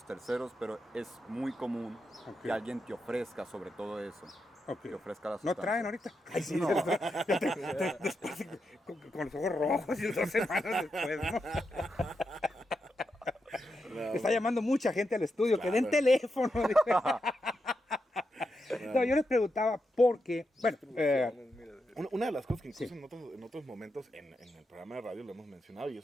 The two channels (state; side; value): normal; both; correlation 0.85